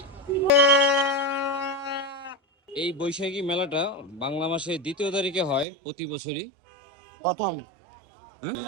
এই বৈশাখী মেলাটা বাংলা মাসের 2য় তারিখে হয় প্রতি বছরই। প্রথম। হ্যাঁ,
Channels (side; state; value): left; drops out; at 5.7 s